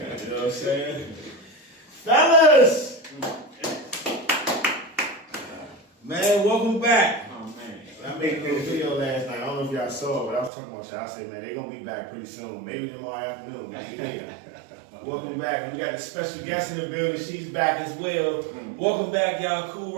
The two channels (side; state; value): left; drops out; at 10.5 s